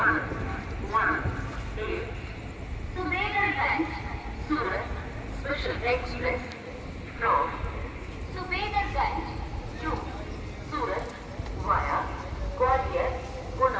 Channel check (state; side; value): identical; both; correlation 1.00